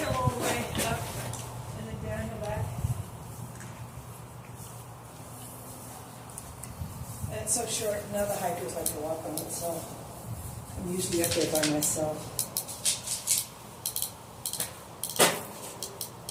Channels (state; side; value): identical; both; correlation 1.00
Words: all the way up, and then downhill back. And it's so short, now the hikers like to walk on it, so I'm usually up there by myself.